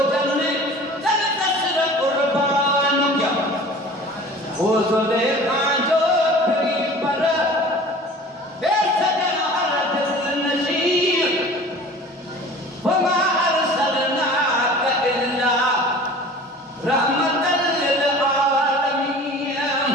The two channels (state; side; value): normal; both; correlation 0.43